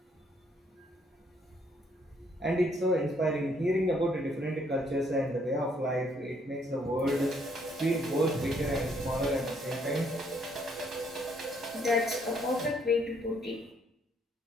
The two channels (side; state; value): both; normal; correlation 0.68